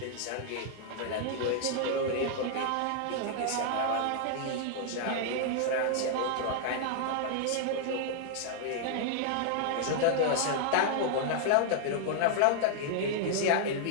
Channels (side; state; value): both; different; correlation 0.00